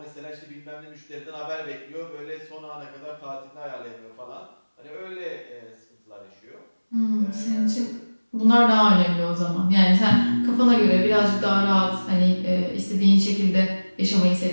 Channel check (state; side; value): inverted; both; correlation -1.00